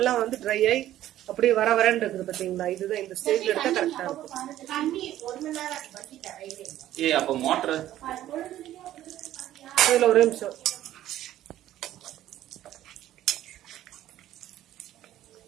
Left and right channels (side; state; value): left; quieter; 13.1 dB